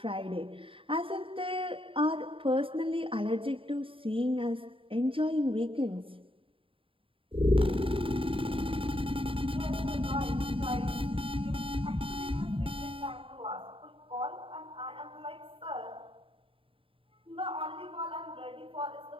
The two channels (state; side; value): late; left; 0.26 ms